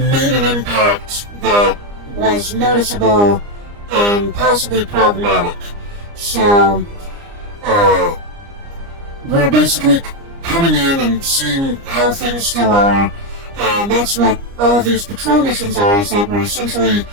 an impact that was noticeable and possibly problematic. So, we're basically coming in and seeing how things still are, and that's what all of these patrol missions are, is that we're essentially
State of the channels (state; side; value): late; left; 29 ms